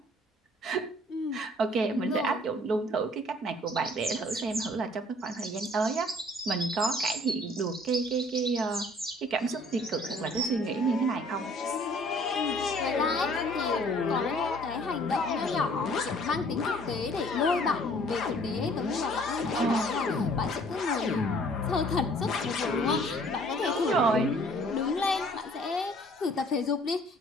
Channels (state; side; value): normal; both; correlation 0.56